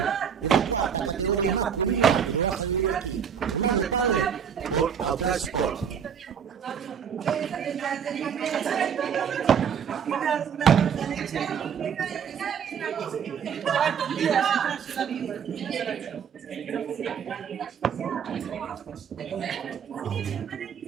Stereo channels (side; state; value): left; quieter; 7.6 dB